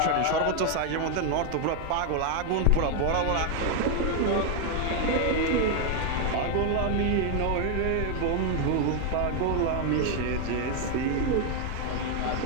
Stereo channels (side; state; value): both; different; correlation 0.01